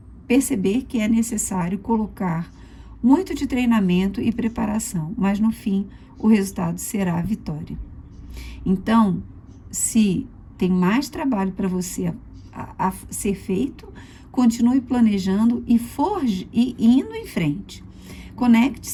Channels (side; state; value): both; identical; correlation 1.00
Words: perceber que é necessário colocar muito de treinamento e preparação, mas no fim o resultado será a vitória. Então, se tem mais trabalho para você a ser feito, continue planejando e indo em frente.